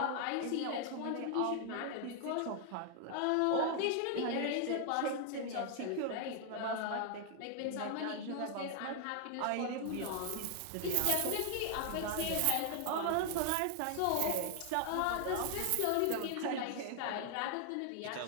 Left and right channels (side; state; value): both; different; correlation 0.00